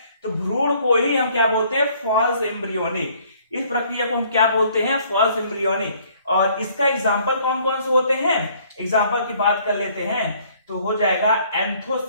तो भ्रूण को ही हम क्या बोलते हैं? False embryony. इस प्रक्रिया को हम क्या बोलते हैं? False embryony. और इसका एग्जाम्पल कौन कौन से होते हैं? एग्जाम्पल की बात कर लेते हैं तो हो जाएगा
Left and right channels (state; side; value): inverted; both; correlation -0.61